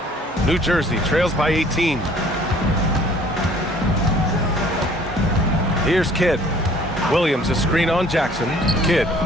New Jersey trails by 18. Here's Kidd. Williams a screen on Jackson. Kidd.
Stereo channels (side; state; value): both; normal; correlation 0.55